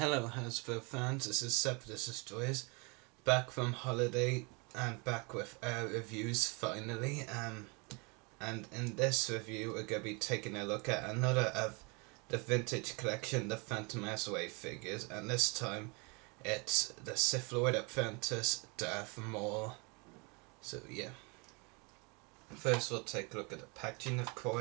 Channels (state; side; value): quieter; left; 30.5 dB